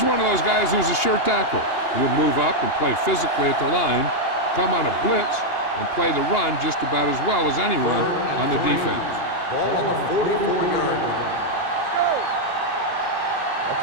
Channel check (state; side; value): late; right; 2.8 ms